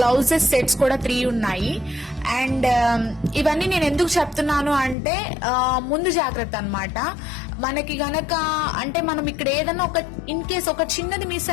గ్లౌజెస్ సెట్స్ కూడా 3 ఉన్నాయి. అండ్ ఇవన్నీ నేను ఎందుకు చెప్తున్నాను అంటే ముందు జాగ్రత్త అన్నమాట. మనకి గనక అంటే మనం ఇక్కడ ఏదైనా ఒక ఇన్ కేస్ ఒక చిన్నది మిస్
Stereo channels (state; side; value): drops out; right; at 5.0 s